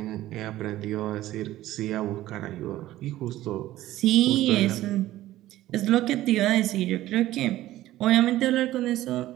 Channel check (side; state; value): left; quieter; 15.1 dB